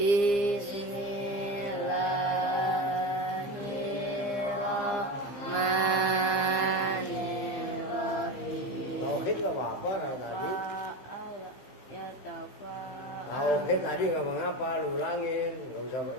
Tauhid nggak apa-apa kan tadi? Tauhid tadi ngomong apa? Lu ulangin, nggak usah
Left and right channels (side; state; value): right; late; 15 ms